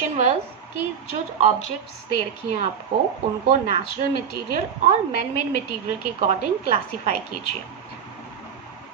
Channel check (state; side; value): quieter; left; 7.5 dB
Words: was कि जो objects दे रखी हैं आपको उनको natural material और man made material के according classify कीजिए.